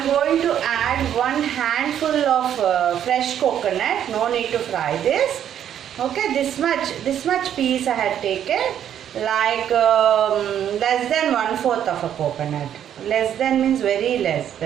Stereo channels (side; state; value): left; quieter; 9.9 dB